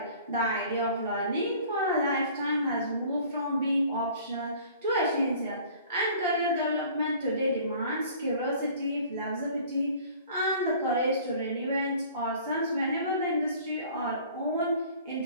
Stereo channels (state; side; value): inverted; both; correlation -0.50